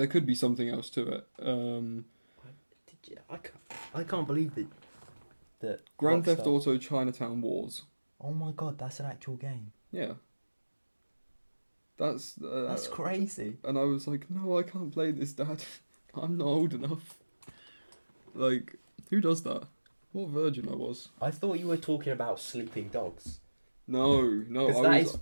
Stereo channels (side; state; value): both; inverted; correlation -1.00